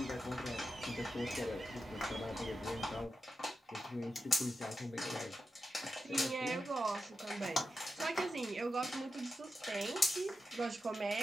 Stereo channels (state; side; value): normal; both; correlation 0.89